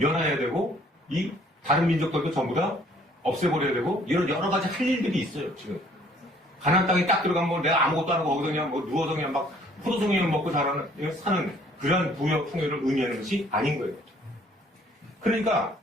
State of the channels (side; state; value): both; normal; correlation 0.59